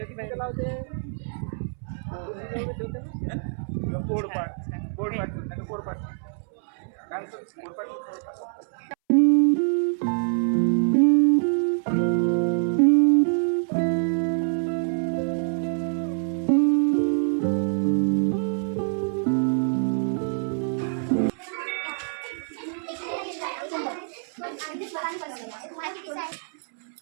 ती कुठं लावते? पोडपाट पोडपाट काय म्हणतो पोडपाट.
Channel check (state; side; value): silent; left; 61 dB below the other